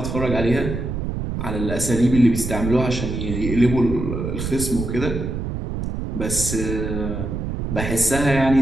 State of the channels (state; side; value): noise; right; rumble, 4 dB below the sound